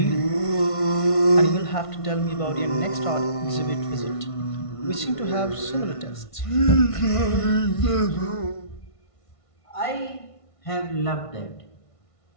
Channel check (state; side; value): late; right; 1.5 ms